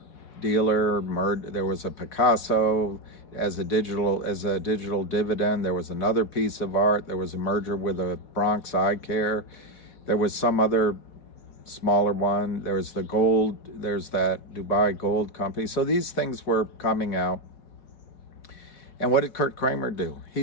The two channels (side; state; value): right; late; 4.4 ms